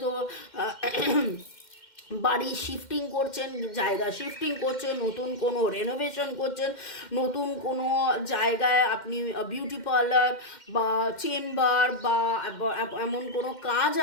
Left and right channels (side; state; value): right; late; 2.1 ms